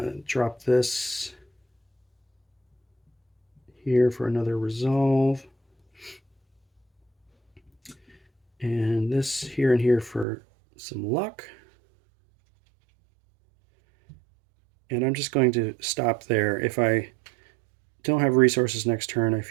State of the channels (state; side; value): drops out; left; at 10.2 s